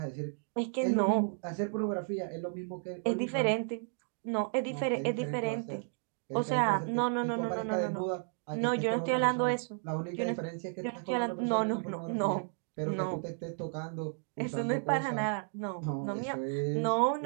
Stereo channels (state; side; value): silent; left; 56 dB below the other